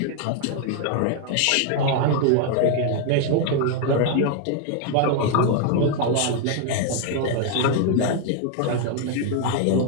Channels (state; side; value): different; both; correlation 0.00